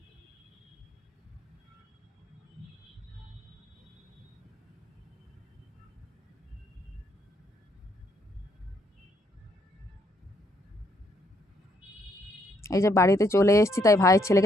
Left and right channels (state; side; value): normal; both; correlation 0.72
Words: এই যে বাড়িতে চলে এসেছি, তাই ভাইয়ের